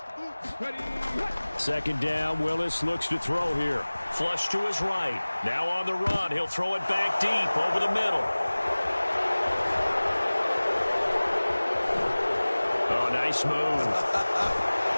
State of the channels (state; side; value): inverted; both; correlation -1.00